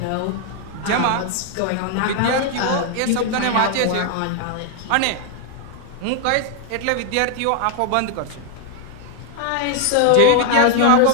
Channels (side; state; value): both; different; correlation 0.00